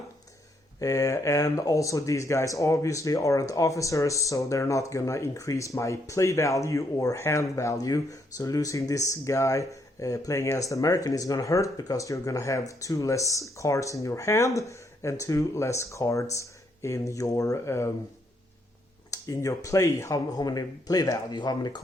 And also these guys obviously aren't officers, so they're not going to increase my play value or hand value. So losing this guy playing as the American is going to hurt, because you're going to have 2 less cards in your hand and 2 less cards in your play, how many play value, how many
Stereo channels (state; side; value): normal; both; correlation 0.74